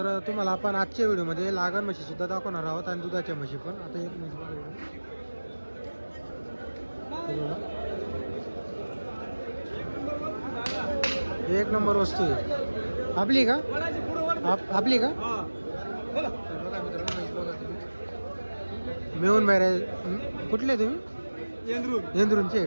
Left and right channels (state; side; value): inverted; both; correlation -1.00